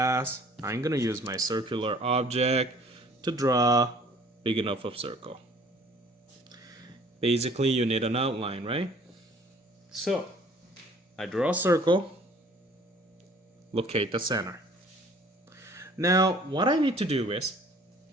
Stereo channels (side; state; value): both; normal; correlation 0.54